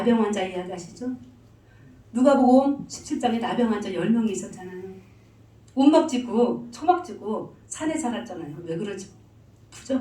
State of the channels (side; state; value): both; identical; correlation 1.00